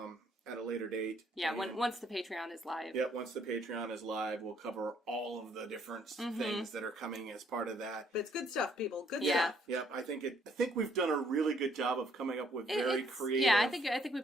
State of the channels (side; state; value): both; normal; correlation 0.67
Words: at a later date. Yeah, once the Patreon is live. Yep, once the Patreon is live, we'll cover all of the different things that are coming as part of that. But it's good stuff, people. Good stuff. Yep, I think we've done a really good job of coming up with very creative. Yeah, I think we